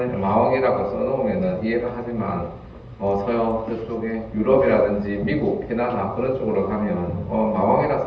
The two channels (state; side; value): identical; both; correlation 1.00